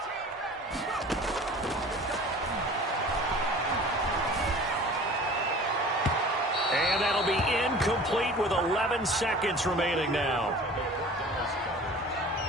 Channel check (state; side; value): normal; both; correlation 0.43